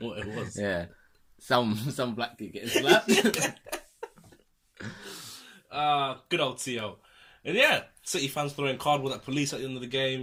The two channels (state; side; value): identical; both; correlation 1.00